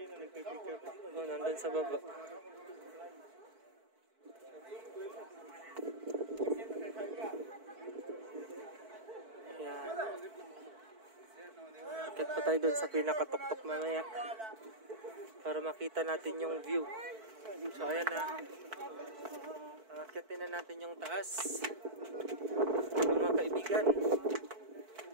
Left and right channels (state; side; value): late; left; 4.5 ms